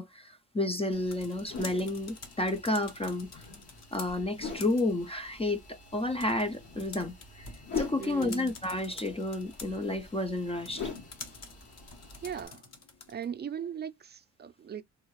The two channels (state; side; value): normal; both; correlation 0.48